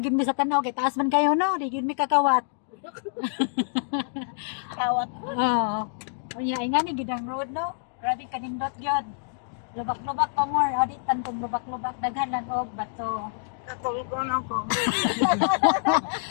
mi sa tanaw kay taas man kayo no, di gyud mi kakawat. Kawat. Oo. Unya ay nga ni gidang road no. Grabe kanindot gyud. Lubak-lubak pa more, audit tantong lubak-lubak daghan lang og bato. Katulgon ako.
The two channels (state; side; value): silent; right; digital silence